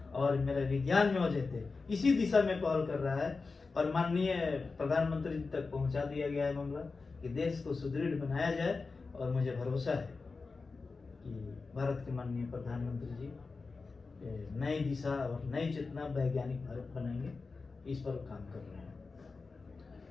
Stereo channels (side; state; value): right; quieter; 4.2 dB